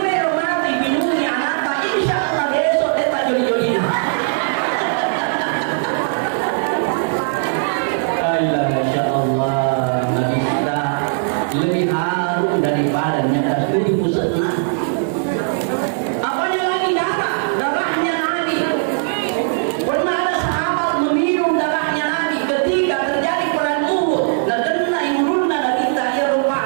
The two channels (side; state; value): left; silent; digital silence